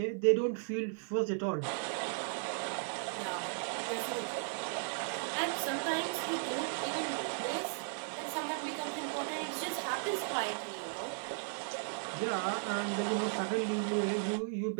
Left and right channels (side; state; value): left; silent; digital silence